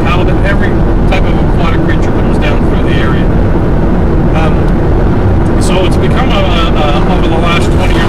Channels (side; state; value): both; identical; correlation 1.00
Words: halibut. Every type of aquatic creature comes down through the area. So it's become over the last 20